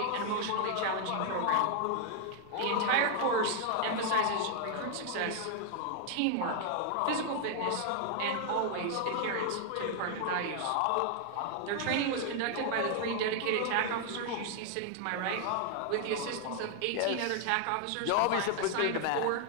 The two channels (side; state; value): both; different; correlation 0.00